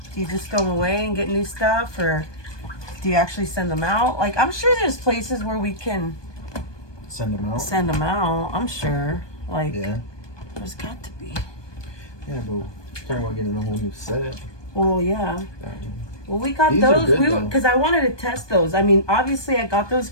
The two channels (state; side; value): late; right; 1.2 ms